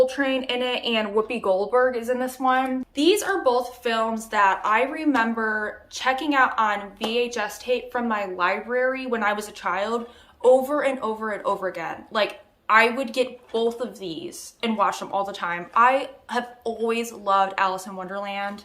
in it, and Whoopi Goldberg is in this one. These are both films that I remember checking out on VHS tape from my library when I was a child over and over and over again. Like, I would get both of these and watch them all the time. I have always loved Alice in Wonderland.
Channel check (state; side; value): identical; both; correlation 1.00